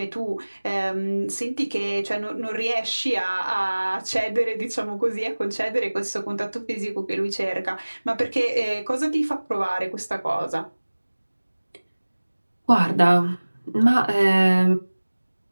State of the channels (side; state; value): both; inverted; correlation -1.00